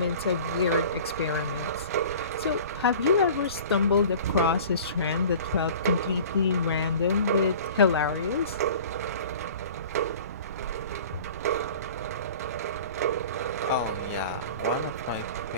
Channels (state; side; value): inverted; both; correlation -0.42